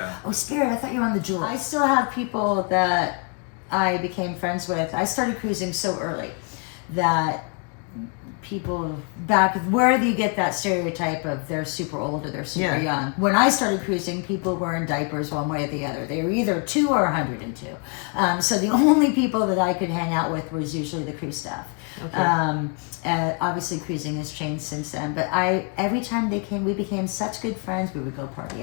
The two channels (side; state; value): right; quieter; 36.1 dB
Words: Oh, Spirit, I thought you were on the Jewel. I still have people that I became friends with. I started cruising so early that people back where do you get that stereotype of they're super old or they're super Yeah. young? When I started cruising, people were in diapers one way or the other. They were either 2 or 102. So the only people that I could hang out with was usually the cruise staff. Obviously cruising has changed since then, but every time they came, we became such good friends. We would go party